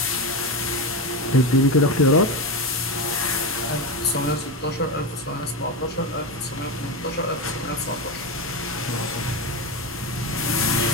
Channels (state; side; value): normal; both; correlation 0.15